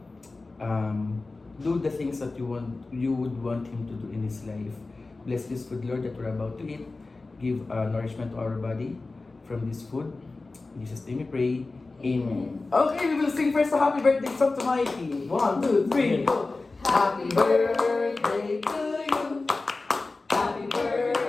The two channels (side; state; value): right; quieter; 3.5 dB